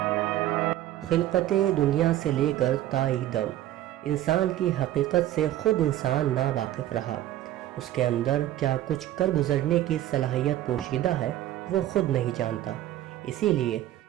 خلقت دنیا سے لے کر تائیں دم انسان کی حقیقت سے خود انسان نا واقف رہا۔ اس کے اندر کیا کچھ کر گزرنے کی صلاحیت پوشیدہ ہے وہ خود نہیں جانتا۔ اسی لیے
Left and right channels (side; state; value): left; quieter; 13.6 dB